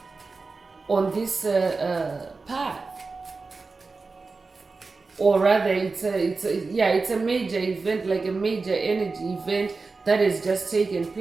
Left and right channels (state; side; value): quieter; left; 4.1 dB